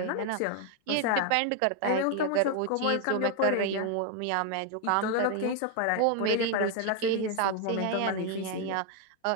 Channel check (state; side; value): different; both; correlation 0.01